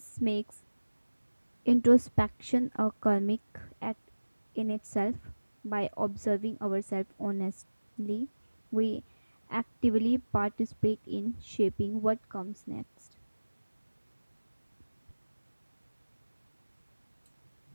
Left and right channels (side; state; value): both; inverted; correlation -1.00